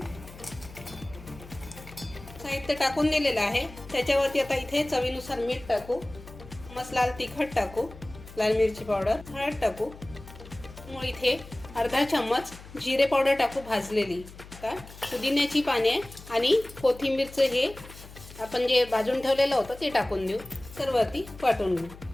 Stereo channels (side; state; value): left; noise; hum, 17 dB below the sound